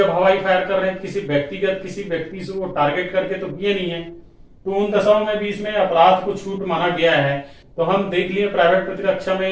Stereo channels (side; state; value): both; identical; correlation 1.00